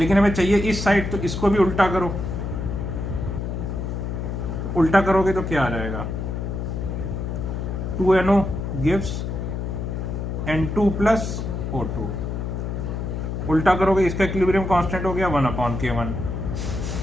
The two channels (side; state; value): left; noise; hum, 3 dB below the sound